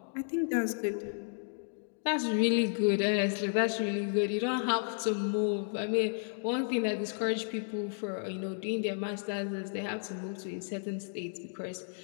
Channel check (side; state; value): right; silent; digital silence